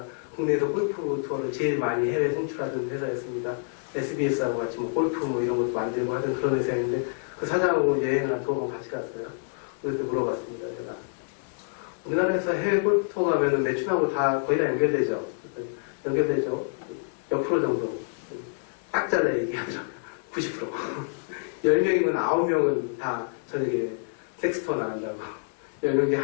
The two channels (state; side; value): silent; right; digital silence